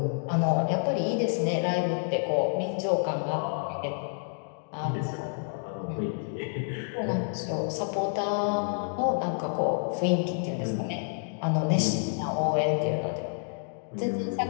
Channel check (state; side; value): silent; right; digital silence